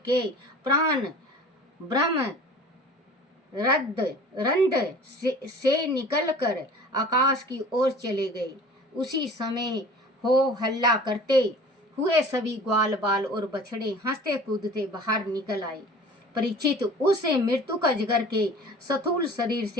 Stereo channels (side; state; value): both; normal; correlation 0.43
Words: प्राण ब्रह्म रंध से निकलकर आकाश की ओर चले गए। उसी समय हो हल्ला करते हुए सभी ग्वाल बाल और बछड़े हंसते कूदते बाहर निकल आए। परीक्षित, उस मृत्यु का अजगर के स्थूल शरीर